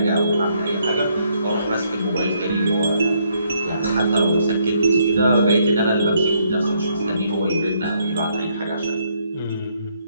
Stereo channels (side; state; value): both; inverted; correlation -0.72